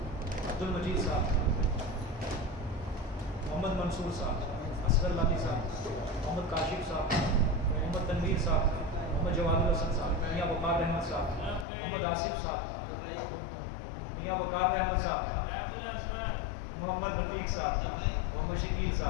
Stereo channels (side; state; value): right; drops out; at 11.7 s